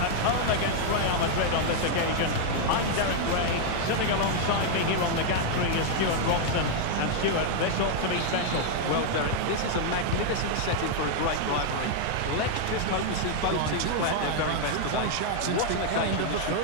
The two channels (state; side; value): different; both; correlation 0.00